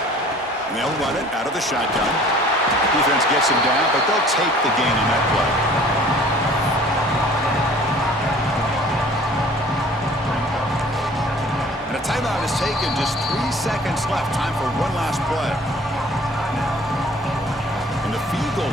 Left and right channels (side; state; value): both; normal; correlation 0.51